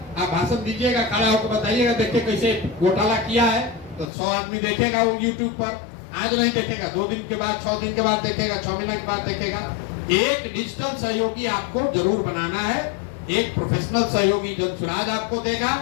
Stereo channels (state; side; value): drops out; right; at 4.1 s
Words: आप भाषण दीजिएगा, खड़ा होकर बताइएगा, देखिए कैसे घोटाला किया है, तो 100 आदमी देखेगा वो YouTube पर। आज नहीं देखेगा, 2 दिन के बाद, 6 दिन के बाद देखेगा, 6 महीने के बाद देखेगा। एक डिजिटल सहयोगी आपको जरूर बनाना है। एक प्रोफेशनल सहयोगी जनसुराज आपको देगा,